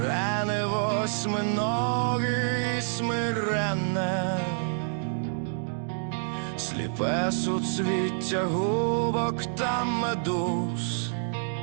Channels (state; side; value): silent; left; digital silence